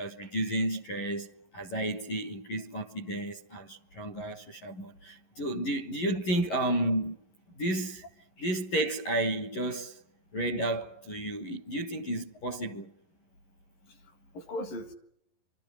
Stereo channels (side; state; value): right; late; 11 ms